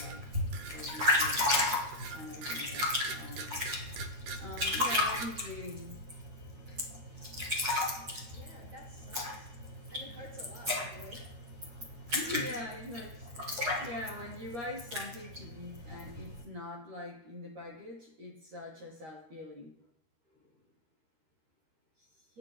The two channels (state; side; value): late; left; 13 ms